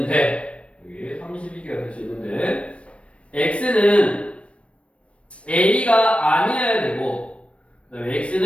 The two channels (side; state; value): right; late; 0.061 ms